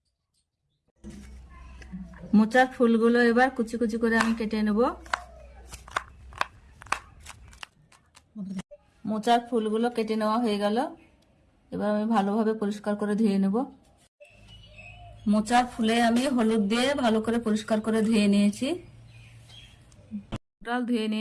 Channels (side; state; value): both; identical; correlation 1.00